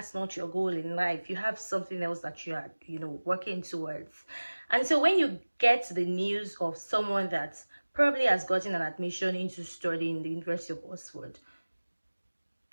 not your goal in life. You have something else that you are working towards. And so when you get the news of someone that probably has gotten an admission into studying the University of Oxford,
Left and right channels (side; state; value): both; inverted; correlation -1.00